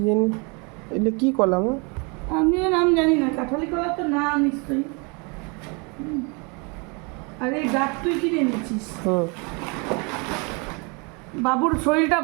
জানি এগুলো কি কলা মা? আমিও নাম জানি না, কাঁঠালি কলা তো না নিশ্চয়ই। আর এই ডাব তুই কিনে এনেছিস? বাবুর শরীরটা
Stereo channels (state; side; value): quieter; left; 31.7 dB